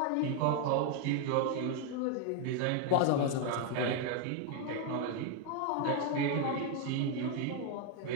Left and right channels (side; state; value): both; different; correlation 0.01